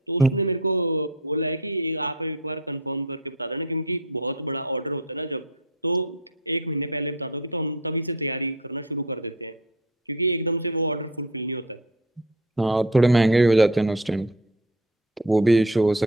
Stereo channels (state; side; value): normal; both; correlation 0.36